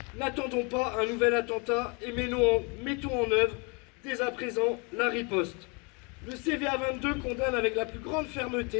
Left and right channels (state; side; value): quieter; right; 32.0 dB